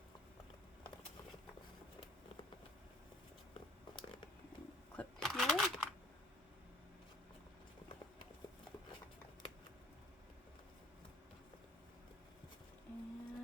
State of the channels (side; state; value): both; normal; correlation 0.55